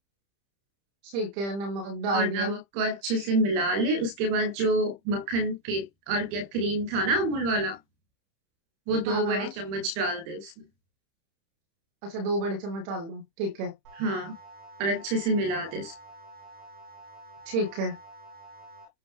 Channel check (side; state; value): left; late; 30 ms